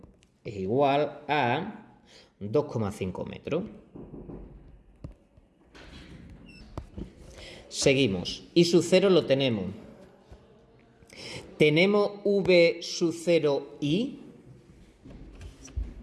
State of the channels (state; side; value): identical; both; correlation 1.00